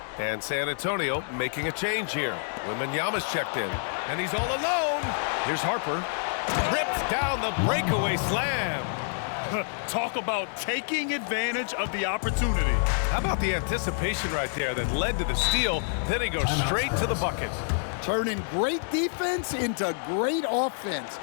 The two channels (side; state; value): right; silent; digital silence